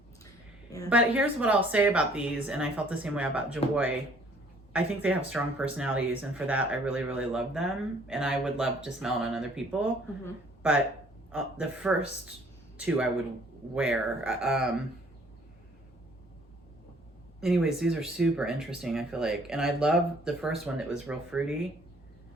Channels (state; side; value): normal; both; correlation 0.59